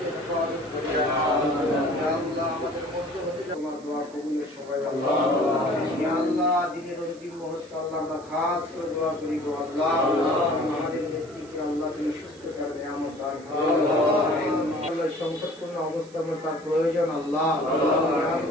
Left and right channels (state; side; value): noise; right; hiss, 24 dB below the sound